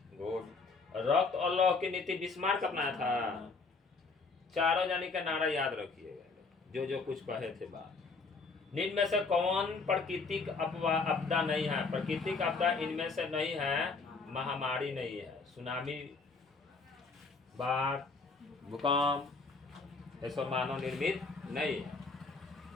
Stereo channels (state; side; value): quieter; right; 4.2 dB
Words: गुड। रक्त और लौह की नीति बिस्मार्क अपनाया था। चारों जानी का नारा याद रखिएगा, जो जो कुछ कहे थे बात। निम्न में से कौन प्राकृतिक आपदा नहीं है? प्राकृतिक आपदा इनमें से नहीं है, महामारी नहीं है, सुनामी, बाढ़, भूकंप, ये सब मानव निर्मित नहीं है।